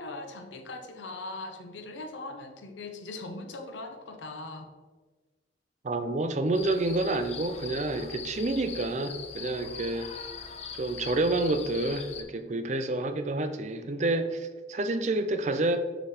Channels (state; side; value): normal; both; correlation 0.37